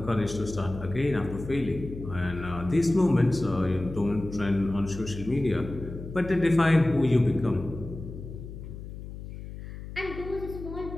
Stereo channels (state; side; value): noise; left; hum, 11 dB below the sound